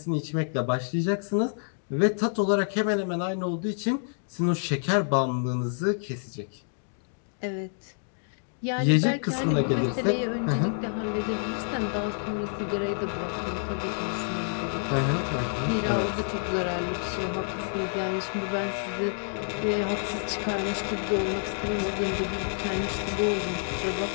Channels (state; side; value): silent; right; digital silence